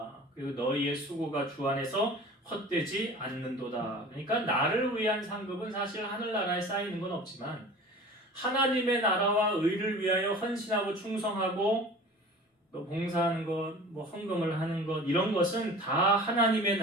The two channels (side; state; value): both; normal; correlation 0.40